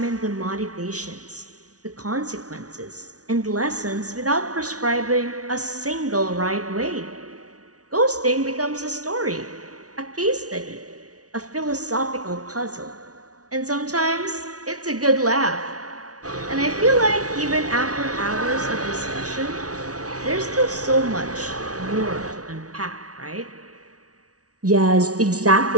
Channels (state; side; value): late; left; 0.68 ms